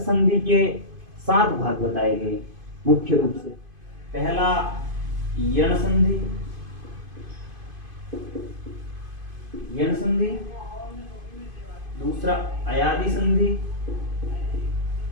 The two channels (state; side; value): late; left; 2.5 ms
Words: के 7 भाग बताए गए मुख्य रूप से। पहला यण संधि, यण संधि। दूसरा अयादि संधि,